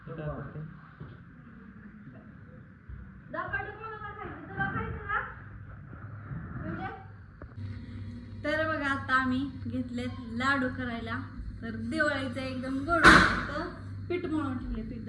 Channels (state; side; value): identical; both; correlation 1.00